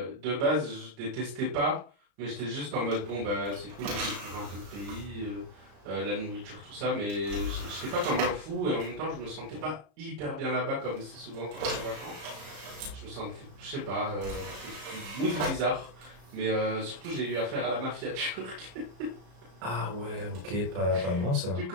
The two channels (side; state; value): left; late; 33 ms